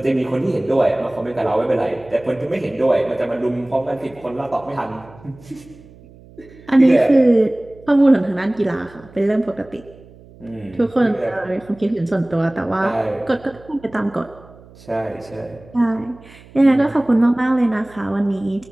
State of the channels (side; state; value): right; noise; hum, 23 dB below the sound